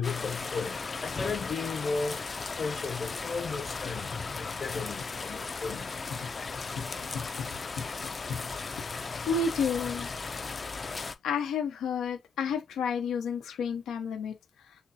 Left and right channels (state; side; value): quieter; right; 4.6 dB